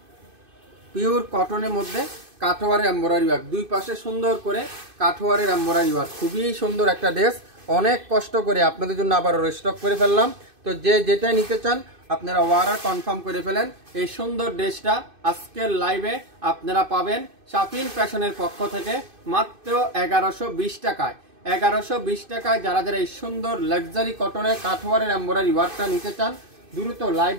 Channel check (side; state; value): left; late; 2.5 ms